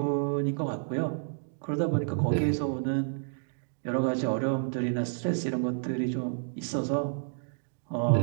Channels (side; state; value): left; silent; digital silence